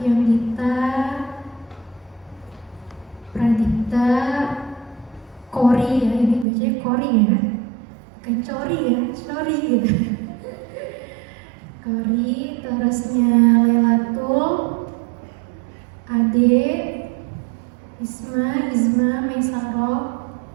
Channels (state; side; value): drops out; left; at 6.5 s